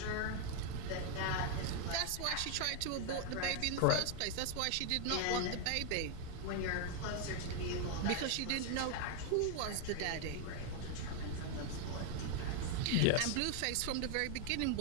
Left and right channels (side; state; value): both; different; correlation 0.00